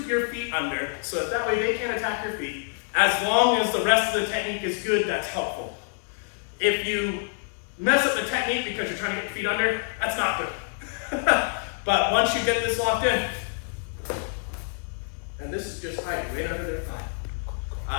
your feet under, so that way they can't attack your feet. As long as the rest of the technique is good, that's helpful. If you mess up the technique because you're trying to get your feet under, that's not good. But once you get this locked in, and this is just hiding right under their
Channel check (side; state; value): right; silent; digital silence